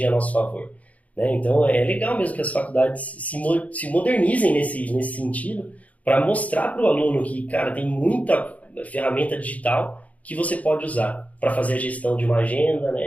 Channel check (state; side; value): late; right; 0.070 ms